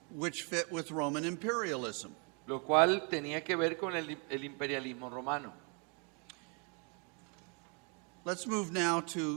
Which fit with Roman imperialism. lo cual tenía que ver con el imperialismo romano. Let's move now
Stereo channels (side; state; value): left; quieter; 35.2 dB